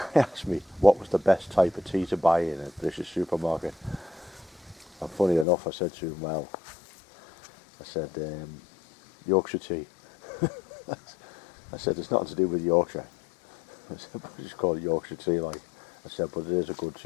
asked me what was the best type of tea to buy in a British supermarket. And funny enough, I said to him, well, I said, Yorkshire tea. I said, it's nothing to do with Yorkshire. I said, but it's called Yorkshire tea, like. I said, but it is a good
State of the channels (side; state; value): right; drops out; at 5.5 s